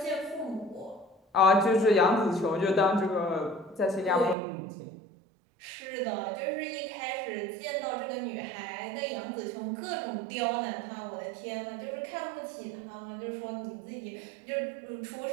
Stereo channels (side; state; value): left; drops out; at 4.4 s